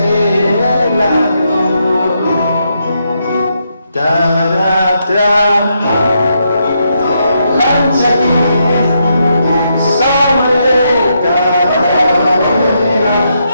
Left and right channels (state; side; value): inverted; both; correlation -0.80